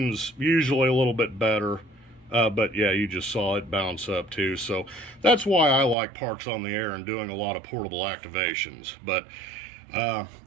usually a little bit better, but yeah, you just saw it bounce up too. So that's why I like parks on the air and doing a lot of portable activations. But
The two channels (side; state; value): left; drops out; at 6.0 s